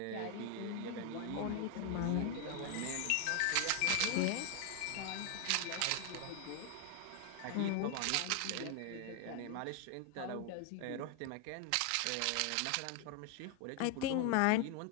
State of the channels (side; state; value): both; different; correlation 0.01